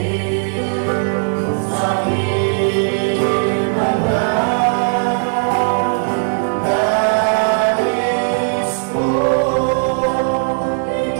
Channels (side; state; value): left; silent; 68 dB below the other